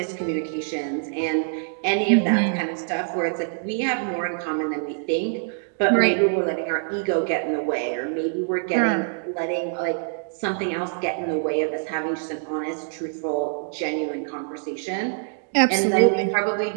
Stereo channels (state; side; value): silent; left; digital silence